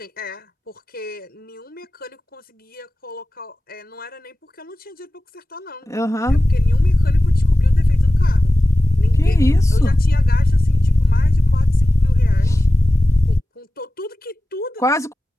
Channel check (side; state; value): both; normal; correlation 0.96